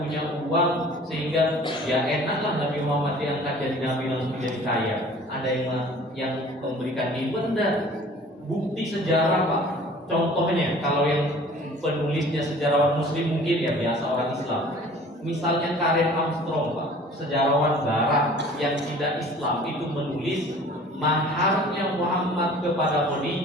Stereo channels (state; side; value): normal; both; correlation 0.48